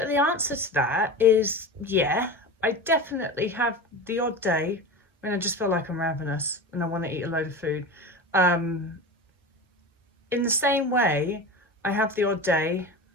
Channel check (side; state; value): both; normal; correlation 0.28